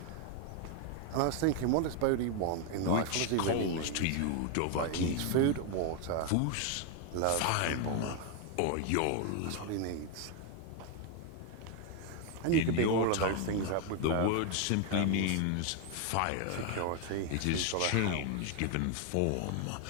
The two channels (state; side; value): different; both; correlation 0.01